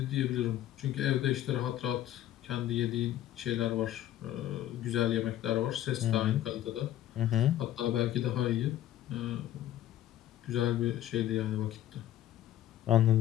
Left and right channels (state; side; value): quieter; right; 12.8 dB